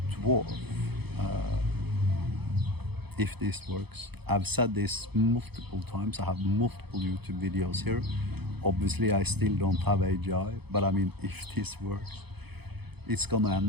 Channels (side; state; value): left; late; 0.98 ms